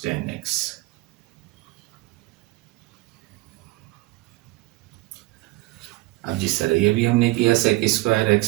10x। अब जिस तरह ये भी हमने किया, सेक स्क्वायर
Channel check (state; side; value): quieter; left; 21.0 dB